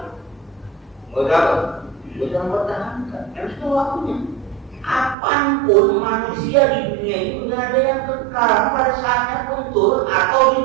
Udah mempertahankan. Harus tahu waktunya. Apapun manusia di dunia itu tidak ada yang kekal, pada saatnya pun turun atau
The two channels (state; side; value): drops out; left; at 5.2 s